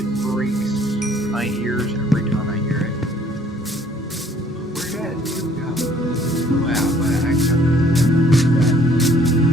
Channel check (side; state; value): both; normal; correlation 0.60